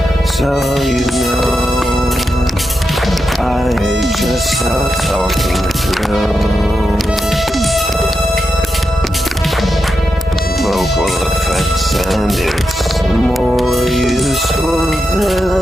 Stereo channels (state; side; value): normal; both; correlation 0.88